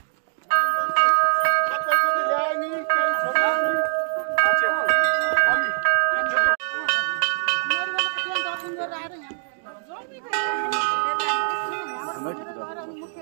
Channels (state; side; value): silent; left; digital silence